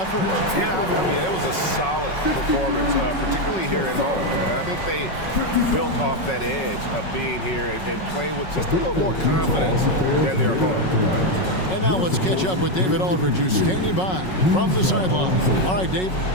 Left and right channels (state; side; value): late; right; 5.4 ms